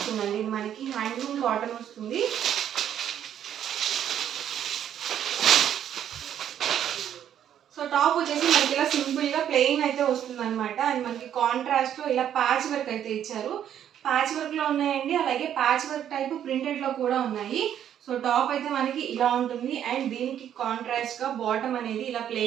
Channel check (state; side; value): quieter; left; 10.0 dB